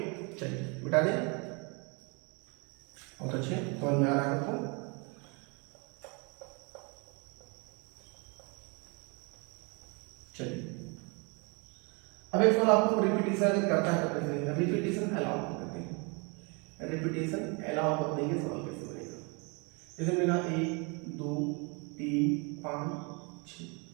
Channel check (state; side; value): quieter; left; 32.1 dB